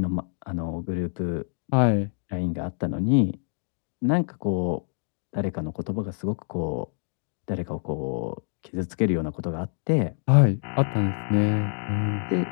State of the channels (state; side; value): silent; right; digital silence